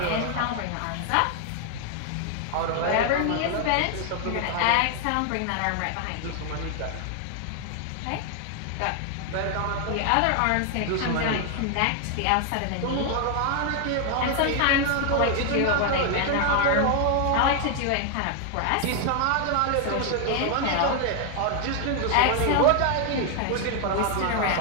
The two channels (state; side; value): different; both; correlation 0.00